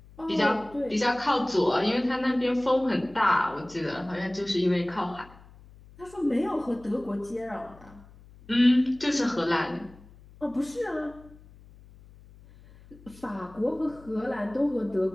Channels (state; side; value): noise; left; hum, 23 dB below the sound